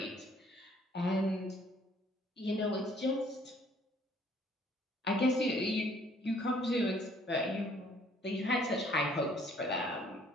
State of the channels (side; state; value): both; normal; correlation 0.61